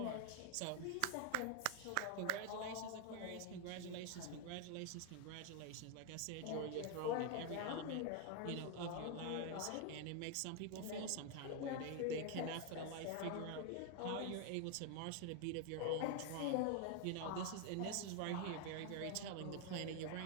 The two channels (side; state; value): both; different; correlation 0.01